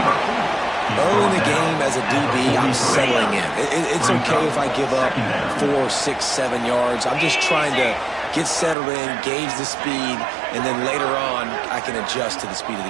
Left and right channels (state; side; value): drops out; left; at 8.8 s